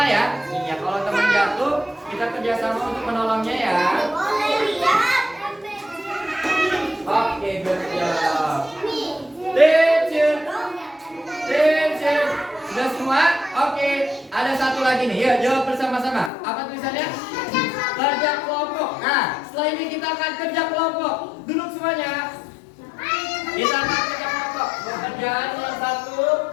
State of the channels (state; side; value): drops out; right; at 16.3 s